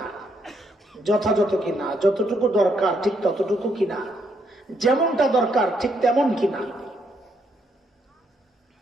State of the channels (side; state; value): both; normal; correlation 0.74